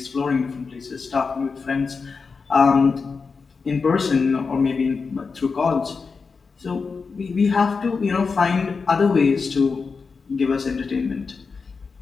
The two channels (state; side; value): quieter; right; 4.9 dB